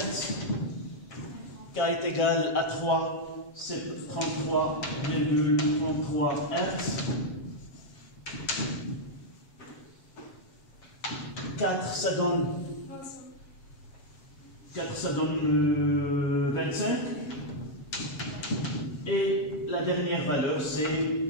K est égal à 3. C'est 33,33 Hz. 4, ça donne 25. Et la dernière valeur, c'est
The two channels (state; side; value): late; right; 7.4 ms